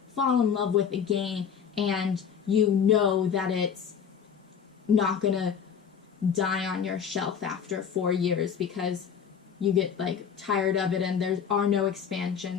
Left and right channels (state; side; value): quieter; right; 7.4 dB